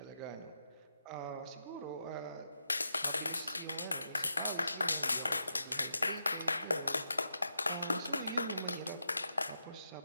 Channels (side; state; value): both; inverted; correlation -0.85